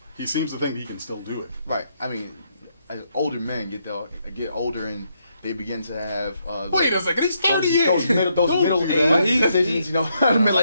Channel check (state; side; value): inverted; both; correlation -0.77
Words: he seems to think he can still do it. Right. I mean, as older men get older and they begin to have Wait a second, he's 38. those middle age decisions,